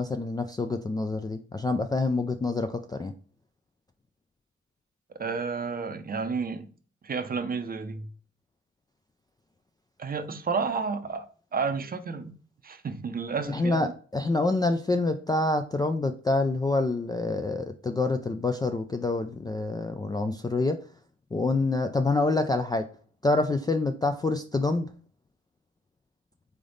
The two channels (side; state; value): both; normal; correlation 0.66